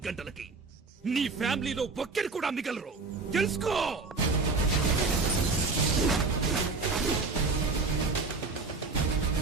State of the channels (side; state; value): left; quieter; 4.1 dB